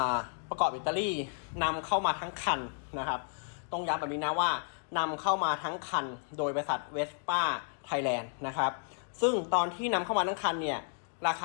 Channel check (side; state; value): right; silent; 56 dB below the other